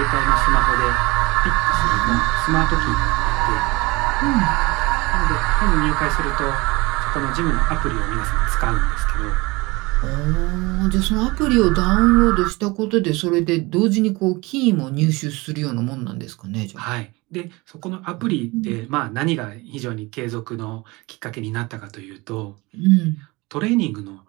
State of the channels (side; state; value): left; quieter; 23.6 dB